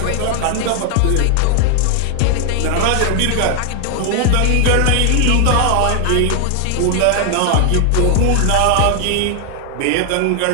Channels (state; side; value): different; both; correlation 0.00